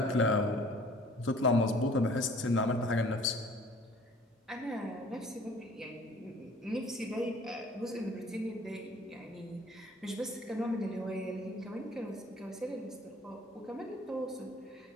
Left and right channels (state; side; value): normal; both; correlation 0.52